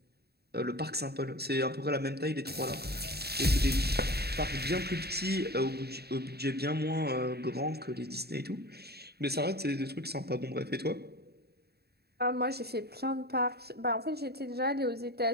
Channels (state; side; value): late; left; 0.47 ms